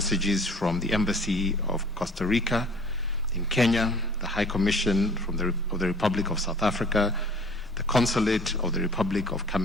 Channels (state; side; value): normal; both; correlation 0.50